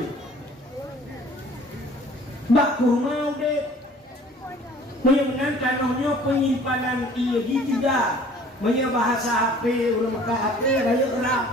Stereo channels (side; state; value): both; normal; correlation 0.51